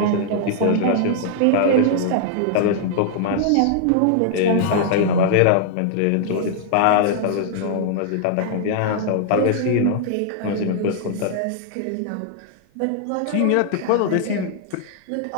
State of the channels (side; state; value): both; different; correlation -0.01